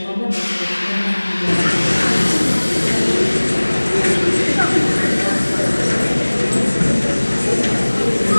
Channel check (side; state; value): both; inverted; correlation -1.00